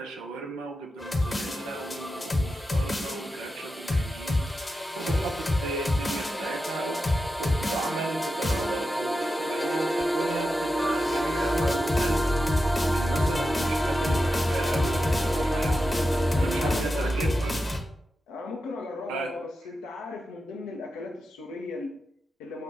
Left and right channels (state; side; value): normal; both; correlation 0.90